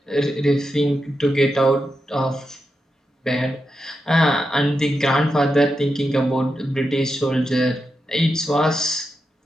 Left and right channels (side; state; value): both; normal; correlation 0.87